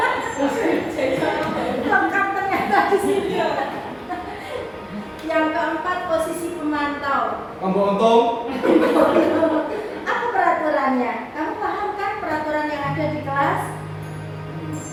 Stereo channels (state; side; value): identical; both; correlation 1.00